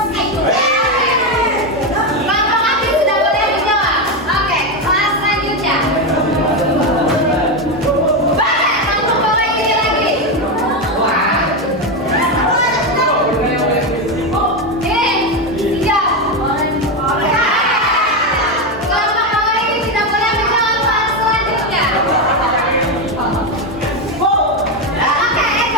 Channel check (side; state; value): both; normal; correlation 0.10